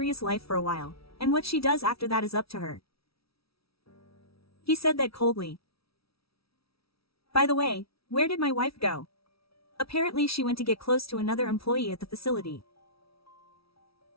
life for a while, and what she does after that is up to her. He said that coldly. By the way, where did my wife go? Apparently she went to get close to another employee at the facility.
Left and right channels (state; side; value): late; right; 0.76 ms